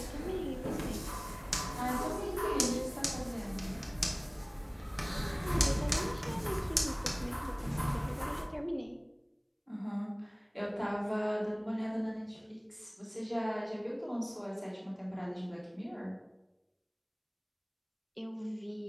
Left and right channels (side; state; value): both; identical; correlation 1.00